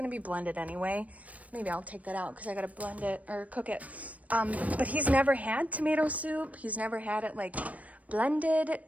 be blended anyway. Maybe I'll take that out because I gotta blend it or cook it. But he's never had tomato soup. He's never had it like blended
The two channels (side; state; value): left; late; 0.069 ms